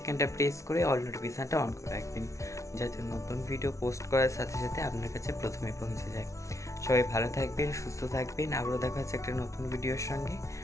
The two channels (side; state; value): right; late; 0.14 ms